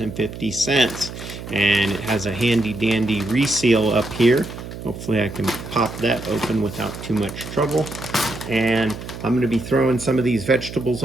And it has a handy dandy reseal up here. Hopefully I can pop that open without too much trouble. And I'm going to be throwing some of these vegetables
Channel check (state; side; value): noise; right; hum, 11 dB below the sound